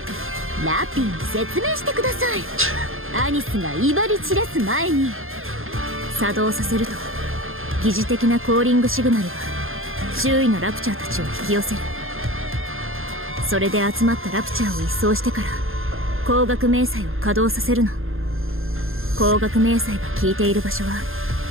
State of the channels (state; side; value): late; left; 0.60 ms